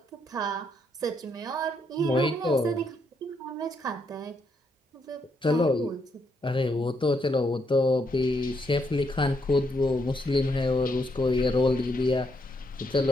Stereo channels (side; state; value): both; normal; correlation 0.76